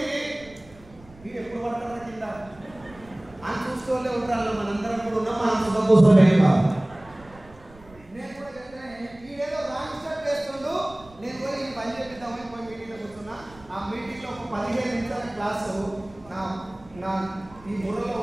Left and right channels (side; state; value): right; noise; rumble, 23 dB below the sound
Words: మీరు ఎప్పుడు పడతారా కింద అని చూసుకోలే ఉంటారు. మనందరం కూడా ఉన్నాం, మనం సుఖపోసలే కాదు. నేను కూడా చెప్తాను, ఈడేదో రాంగ్ స్టెప్ వేస్తుండు, నేను పోయి ఈ పని చెప్పిద్దామని పోయి మీటింగ్లో కూర్చున్నా. ఆ మీటింగ్లో ఒక 15 నిమిషాల క్లాసు నా ఈ బుర్రలో